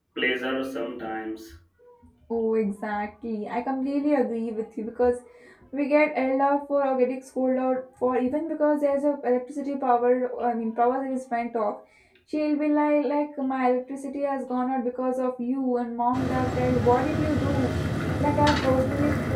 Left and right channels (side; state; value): both; identical; correlation 1.00